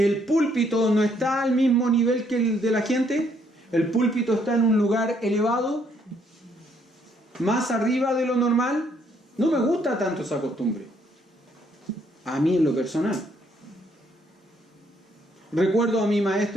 púlpito no está al mismo nivel que el de la gente. El púlpito está en un lugar elevado, más arriba de lo normal. No me gusta tanto esa costumbre. A mí en lo personal. Recuerdo a mi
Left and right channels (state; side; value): normal; both; correlation 0.69